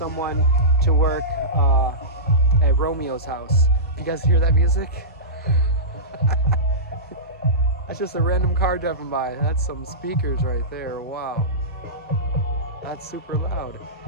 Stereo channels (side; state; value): both; normal; correlation -0.19